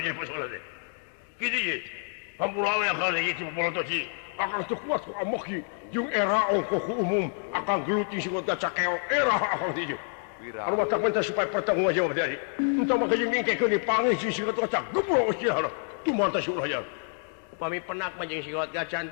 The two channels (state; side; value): silent; right; 55 dB below the other